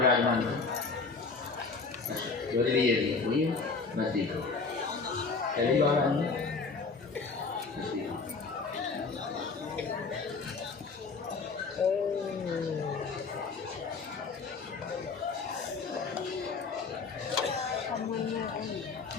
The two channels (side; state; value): right; quieter; 4.5 dB